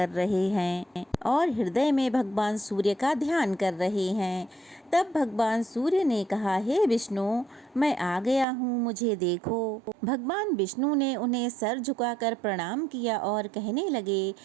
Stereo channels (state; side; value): drops out; left; at 8.5 s